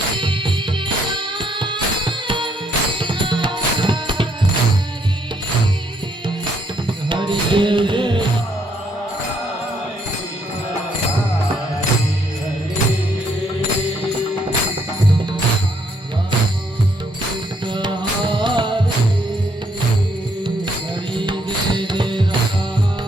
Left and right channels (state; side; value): normal; both; correlation 0.71